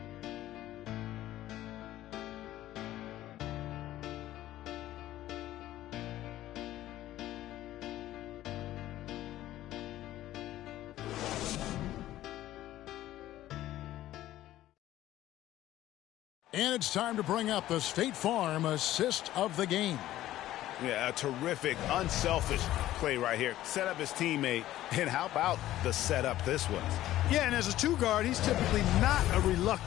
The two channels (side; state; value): right; quieter; 14.2 dB